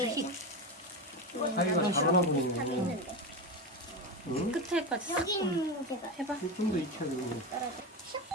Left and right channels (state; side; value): normal; both; correlation 0.18